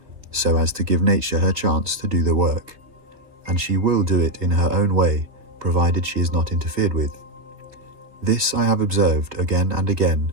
so as to give nature her chance to do the work. And she will do it in her own way, provided she is not interfered with. This I have observed again and again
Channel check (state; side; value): late; left; 3.3 ms